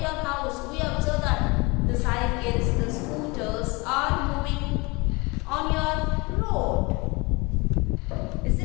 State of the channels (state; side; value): quieter; right; 26.3 dB